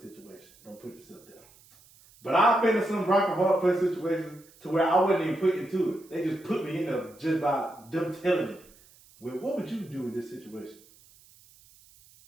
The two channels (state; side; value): noise; right; hiss, 27 dB below the sound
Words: situation? Don't put yourself there. But I've been in some rock and hard place situations to where I wasn't even put into it. They just put me in there just by them telling me. Well, what would you do in this situation?